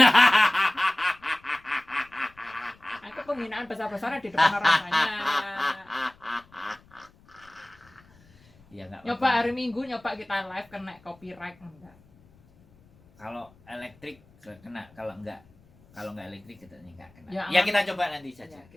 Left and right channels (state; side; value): noise; left; rumble, 29 dB below the sound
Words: Aku penghinaan besar-besaran di depan orang banyak. Ya nggak Nyoba apa-apa. hari Minggu nyoba kita live kena copyright enggak. Kalau elektrik kena, kalau nggak elektrik kita nggak kena. Ya, Ya, kita coba nanti saja. Ya,